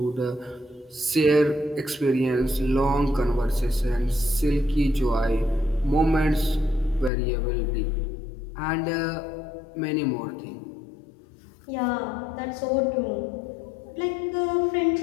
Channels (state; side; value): drops out; right; at 7.1 s